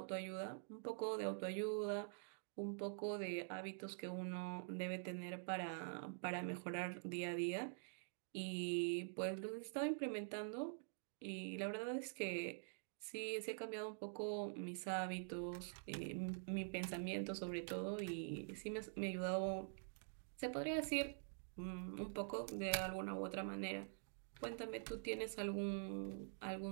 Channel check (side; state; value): left; silent; digital silence